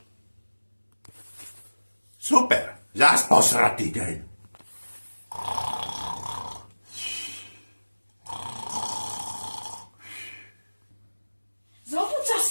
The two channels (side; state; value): both; inverted; correlation -1.00